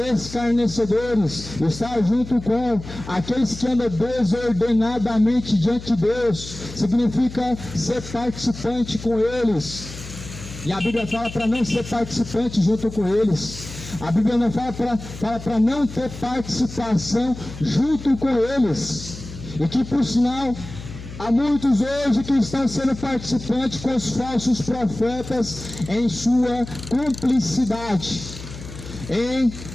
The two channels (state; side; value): noise; left; hum, 13 dB below the sound